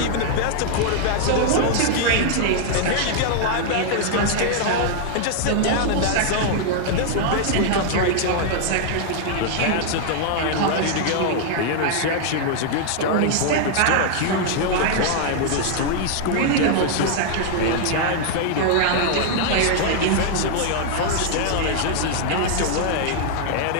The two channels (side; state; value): both; different; correlation 0.00